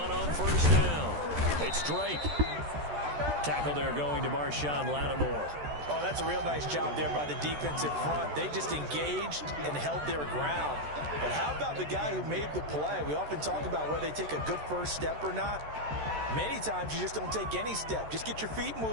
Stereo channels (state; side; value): late; left; 13 ms